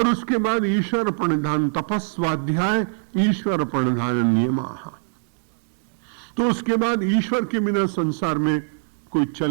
उसके बाद ईश्वर प्रणिधान तपस्वाध्याय ईश्वर प्रणिधान नियमाः। तो उसके बाद ईश्वर के बिना संसार में कोई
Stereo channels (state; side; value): silent; left; 64 dB below the other